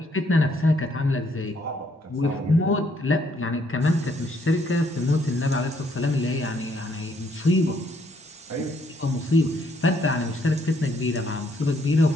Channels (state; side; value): normal; both; correlation 0.69